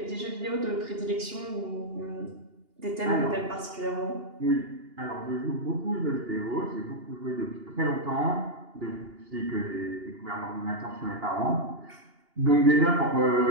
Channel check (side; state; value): left; late; 2.8 ms